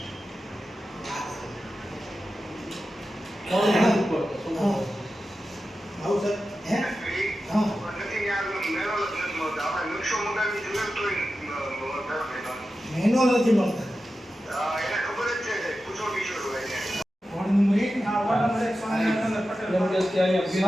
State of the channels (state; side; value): normal; both; correlation 0.92